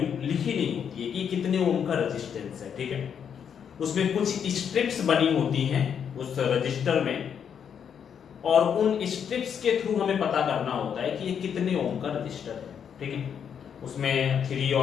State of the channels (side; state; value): right; quieter; 7.8 dB